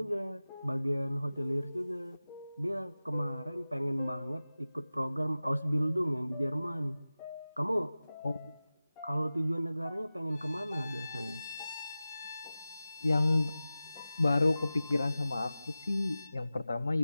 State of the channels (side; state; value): both; inverted; correlation -0.96